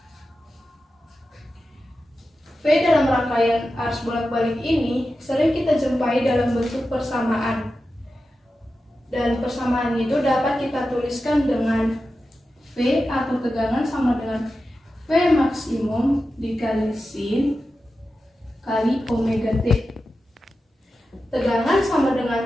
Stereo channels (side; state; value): both; normal; correlation 0.92